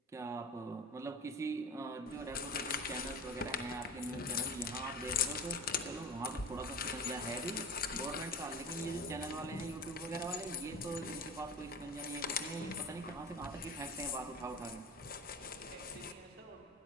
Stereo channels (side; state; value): both; normal; correlation 0.32